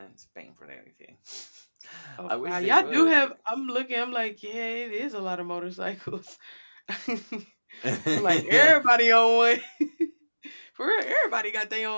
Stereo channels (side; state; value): both; inverted; correlation -1.00